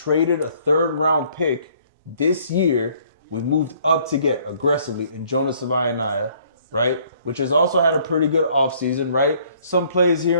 a 3rd round pick this year. We moved up to get aggressively in Jonas Savaianaya, right? Which has also had a pretty good offseason, right? Some plays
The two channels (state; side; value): inverted; both; correlation -0.61